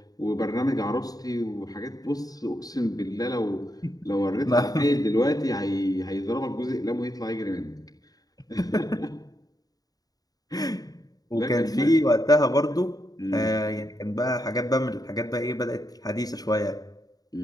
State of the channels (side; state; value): right; late; 0.18 ms